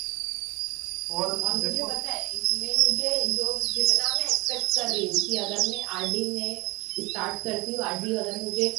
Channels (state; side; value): quieter; left; 24.1 dB